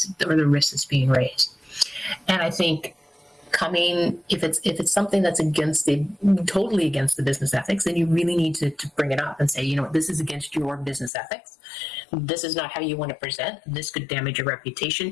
or the risk that's being raised. And I think if it's something that's totally against the business ethics, then you really need to bring it up and say, this is against your business ethics. This is not how you want to present. This could damage your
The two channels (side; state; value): right; drops out; at 11.1 s